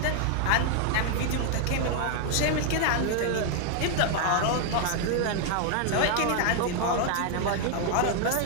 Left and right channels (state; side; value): different; both; correlation 0.00